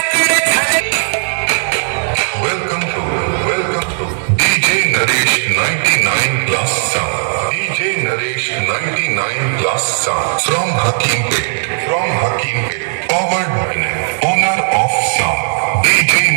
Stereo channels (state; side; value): silent; left; digital silence